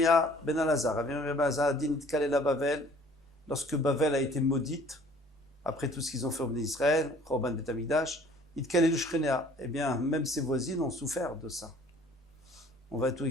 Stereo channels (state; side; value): normal; both; correlation 0.53